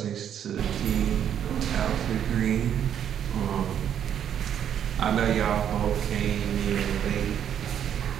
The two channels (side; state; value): left; quieter; 9.3 dB